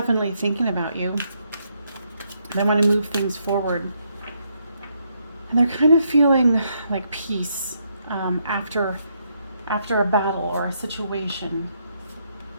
thinking about you. They want to move things forward. And they're kind of feeling like peace after a battle or a situation.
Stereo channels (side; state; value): both; inverted; correlation -0.76